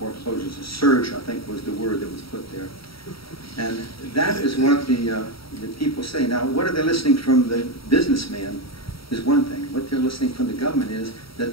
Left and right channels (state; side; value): late; right; 0.75 ms